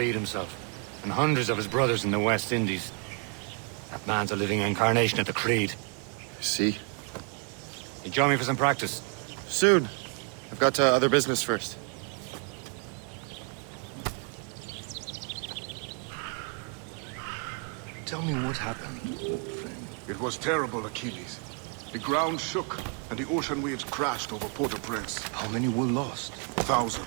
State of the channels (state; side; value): quieter; left; 39.6 dB